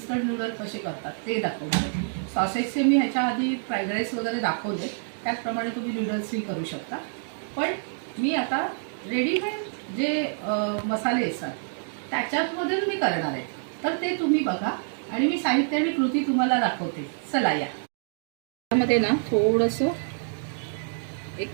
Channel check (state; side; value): silent; left; digital silence